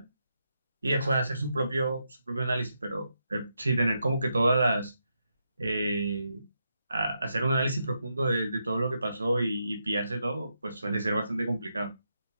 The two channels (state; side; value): inverted; both; correlation -0.83